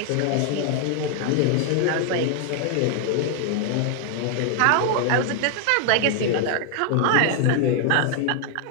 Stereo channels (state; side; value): different; both; correlation 0.00